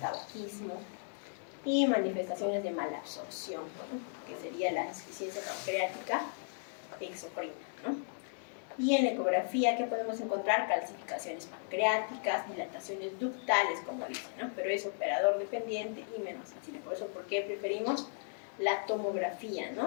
y manifestaciones de malabsorción, ¿no? Que sería la insuficiencia pancreática exocrina, ¿no? Y en la ecografía, ¿qué podemos encontrar? Calcificaciones pancreáticas, dilataciones ductales, como dicen, ¿no? Pero es operador dependiente y menos sensible. Por eso, ¿por qué preferimos la tomografía,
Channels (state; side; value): silent; right; digital silence